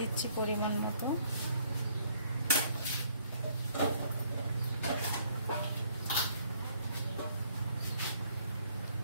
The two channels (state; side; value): inverted; both; correlation -0.65